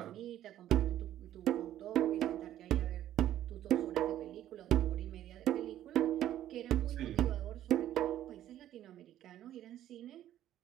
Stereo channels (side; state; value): left; quieter; 12.3 dB